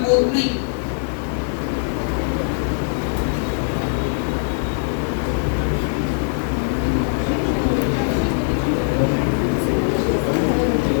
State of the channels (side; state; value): right; silent; digital silence